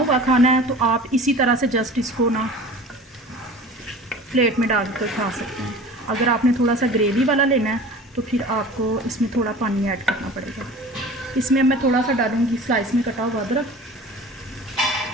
खाना है तो आप इसी तरह से जस्ट इसको ना प्लेट में डाल कर खा सकते हैं। अगर आपने थोड़ा सा ग्रेवी वाला लेना है तो फिर आपको इसमें थोड़ा पानी ऐड करना पड़ेगा। इसमें मैं थोड़ा सा डालूँगी स्लाइस में कटा हुआ अदरक।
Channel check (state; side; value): normal; both; correlation 0.40